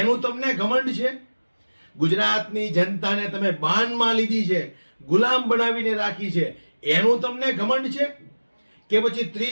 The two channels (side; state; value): both; inverted; correlation -1.00